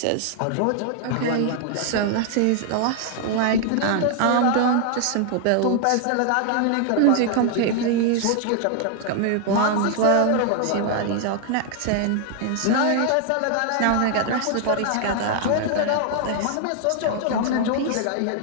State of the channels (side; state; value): both; different; correlation 0.00